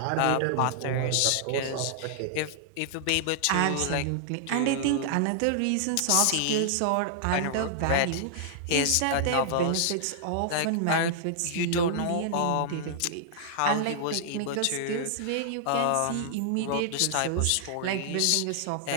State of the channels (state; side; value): different; both; correlation -0.01